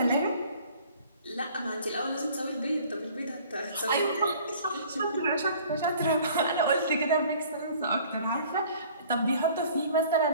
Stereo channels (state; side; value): inverted; both; correlation -0.52